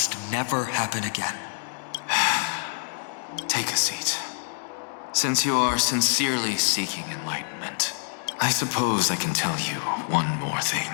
never happen again. Take a seat. Since you are sincerely seeking enlightenment, I suppose I can tell you one more thing.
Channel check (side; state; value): right; silent; digital silence